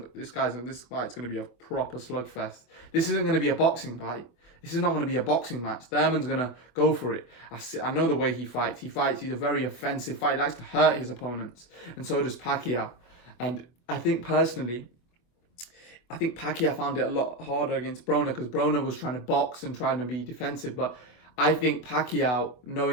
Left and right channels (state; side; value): late; right; 25 ms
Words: to be a proper slugfest. This isn't going to be a boxing fight. This is not going to be a boxing match. Thurman's going to go for it. I know the way he fights. He's a very offensive fighter. He likes to hurt his opponents. And so does Pacquiao. And I think personally, Pacquiao found it a lot harder against Broner because Broner was trying to box and trying to be defensive. But I think Pacquiao,